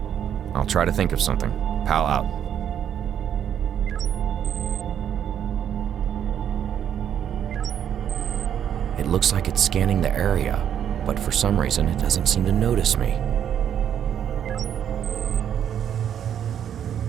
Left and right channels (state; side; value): quieter; left; 9.3 dB